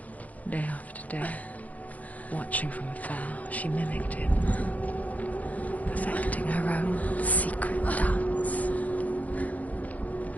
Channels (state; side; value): late; right; 0.074 ms